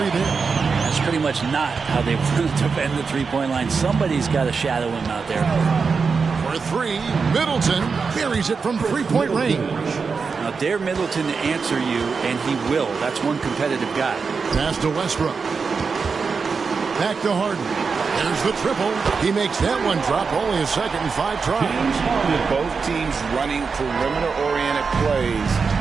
there. That's pretty much not how they want to defend the three-point line. Somebody's got to shadow him out there. For 3, Middleton buries it from 3-point range. Now, dare Middleton to answer you, and he will. That's one competitive guy. Pass to Westbrook. Back to Harden. There's the triple. He makes that one drop. Only a second and 5 tries. Both teams running perimeter-oriented plays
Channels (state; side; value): quieter; left; 5.1 dB